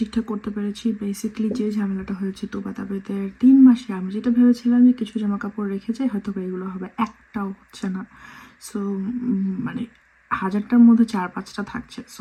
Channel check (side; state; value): both; identical; correlation 1.00